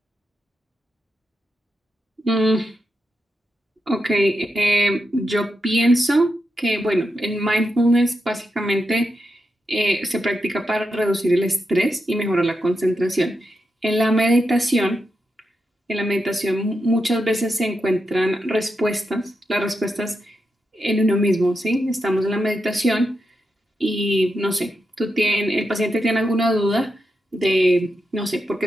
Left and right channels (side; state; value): both; normal; correlation 0.86